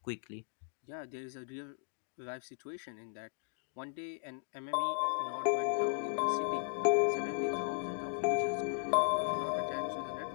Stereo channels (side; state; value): right; silent; digital silence